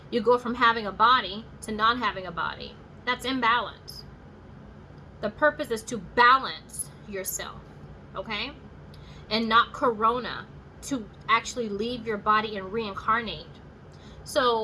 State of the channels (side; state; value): both; identical; correlation 1.00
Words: You go from having a body to not having a body. That's imbalance. The purpose is to balance yourself, okay? And not corona to actually leave your body and reincarnate.